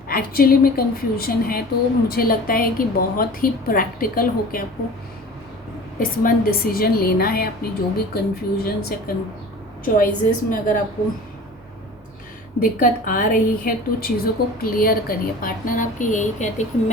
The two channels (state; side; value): normal; both; correlation 0.40